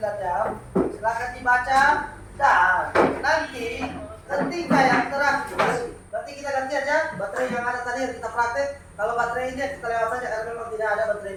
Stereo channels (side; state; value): both; identical; correlation 1.00